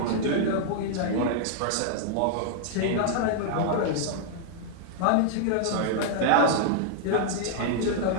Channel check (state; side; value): different; both; correlation -0.01